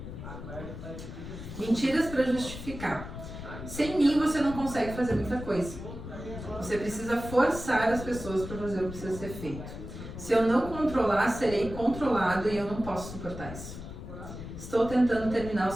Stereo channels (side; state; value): left; noise; rumble, 10 dB below the sound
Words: Mentiras para justificar. Sem mim você não consegue fazer muita coisa. Você precisa forçar as pessoas para fazer o que precisa ser feito. Se eu não controlar, serei controlado e eu não posso suportar isso. Estou tentando terminar o